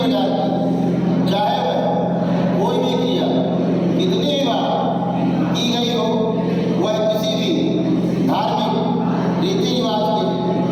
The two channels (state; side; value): identical; both; correlation 1.00